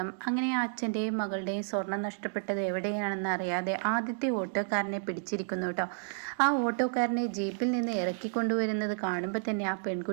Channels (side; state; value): left; silent; digital silence